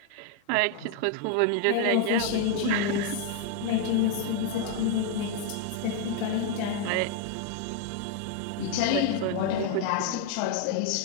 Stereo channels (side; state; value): both; different; correlation 0.00